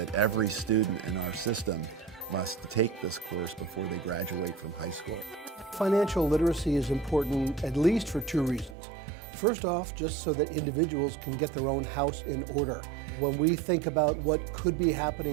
every student in our system must take this course before they graduate from high school. Financial literacy is important at least for two reasons. First off, just so that individuals can get their own house in order. When we think about what could be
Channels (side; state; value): left; drops out; at 8.8 s